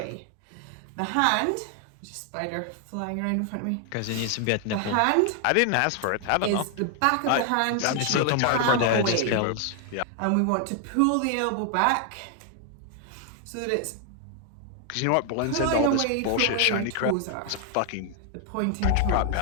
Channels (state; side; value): different; both; correlation 0.00